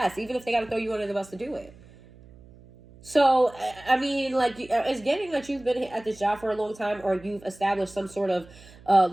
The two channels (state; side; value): noise; right; hum, 23 dB below the sound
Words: even if they got to throw you under the bus to do it. So, I mean, like, it's getting that you've been at this job for a long time, or you've established some sort of